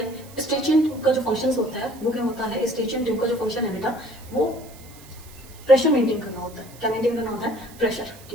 स्ट्रेचिंग ट्यूब का जो फंक्शन होता है वो क्या होता है, स्ट्रेचिंग ट्यूब का जो फंक्शन है बेटा वो प्रेशर मेंटेन करना होता है। क्या मेंटेन करना होता है, प्रेशर।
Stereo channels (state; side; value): noise; right; hiss, 21 dB below the sound